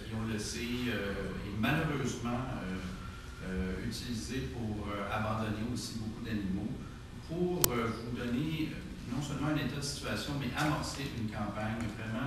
on le sait, est malheureusement utilisée pour abandonner aussi beaucoup d'animaux, pour vous donner non seulement un état de situation, mais amorcer une campagne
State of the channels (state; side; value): identical; both; correlation 1.00